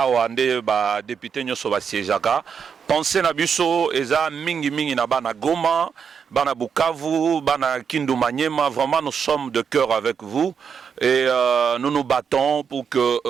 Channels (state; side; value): quieter; left; 6.7 dB